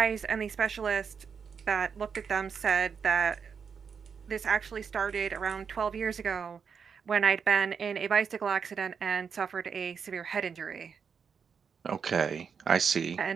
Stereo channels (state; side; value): quieter; left; 6.4 dB